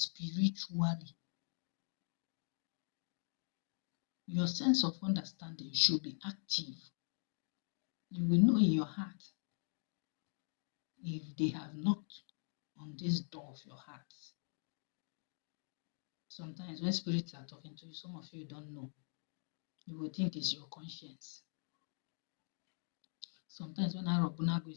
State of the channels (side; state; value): right; silent; digital silence